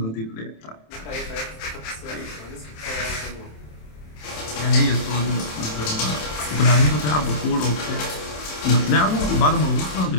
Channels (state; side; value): late; right; 27 ms